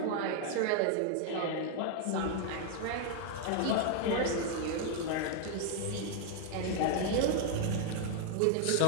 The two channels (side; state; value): both; different; correlation 0.00